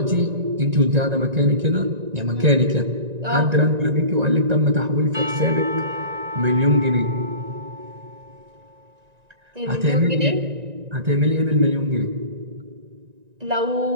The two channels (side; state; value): left; late; 1.9 ms